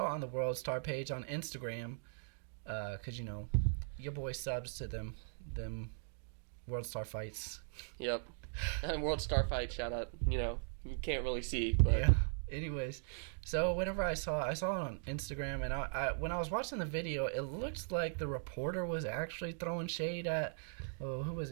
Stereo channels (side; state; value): left; silent; digital silence